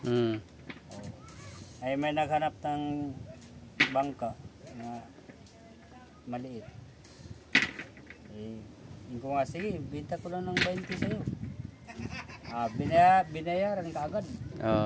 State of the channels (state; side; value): identical; both; correlation 1.00